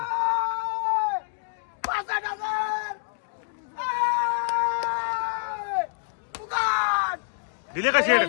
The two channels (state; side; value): silent; right; digital silence